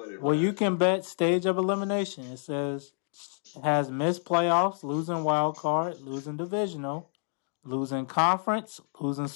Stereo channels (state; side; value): silent; right; digital silence